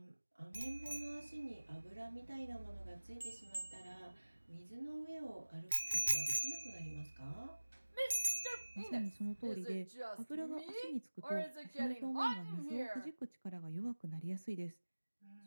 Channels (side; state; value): both; inverted; correlation -1.00